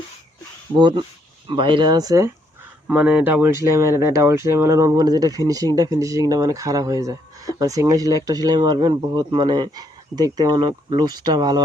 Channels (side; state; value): both; normal; correlation 0.72